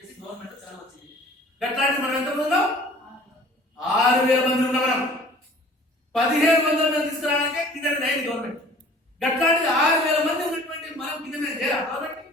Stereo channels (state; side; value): normal; both; correlation 0.49